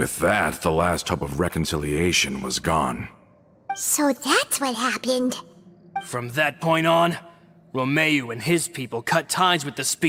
that, the last hope of reconciliation was gone. So that's what happened. From that point on, Romeu and his people cut ties with the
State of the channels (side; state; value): both; identical; correlation 1.00